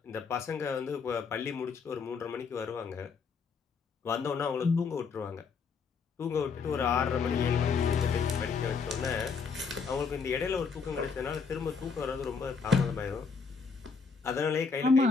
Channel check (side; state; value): right; quieter; 5.3 dB